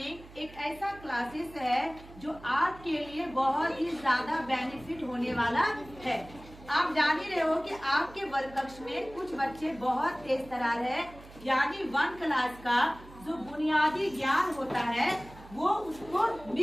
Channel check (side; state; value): right; noise; hum, 19 dB below the sound